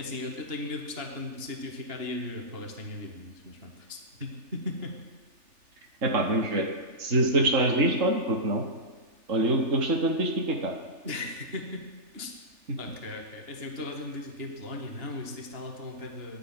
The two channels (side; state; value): left; late; 3.4 ms